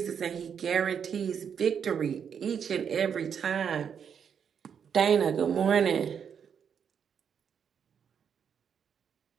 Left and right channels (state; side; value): quieter; left; 7.5 dB